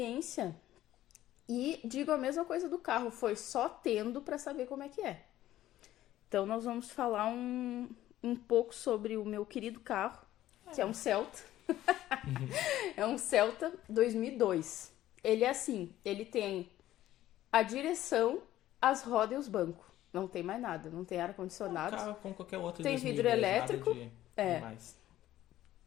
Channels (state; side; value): quieter; right; 13.9 dB